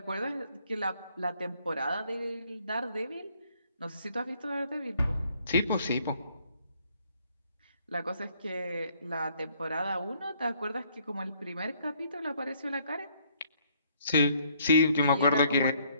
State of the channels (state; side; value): inverted; both; correlation -0.65